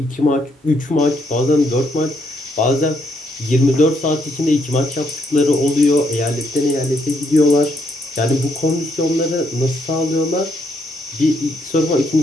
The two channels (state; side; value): normal; both; correlation 0.74